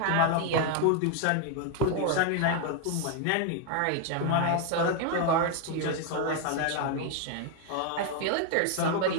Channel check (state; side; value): different; both; correlation 0.00